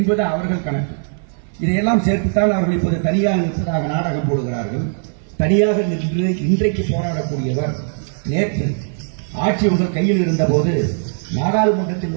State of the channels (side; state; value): left; silent; 58 dB below the other